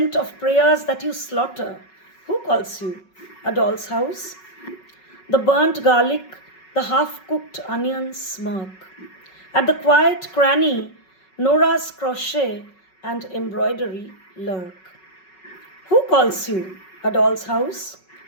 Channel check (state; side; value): late; right; 5.4 ms